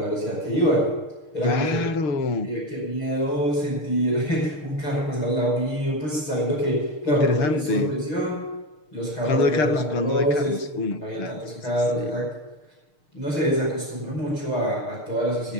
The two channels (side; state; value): right; late; 6.6 ms